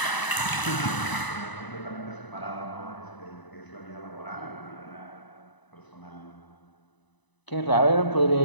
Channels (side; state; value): right; late; 1.0 ms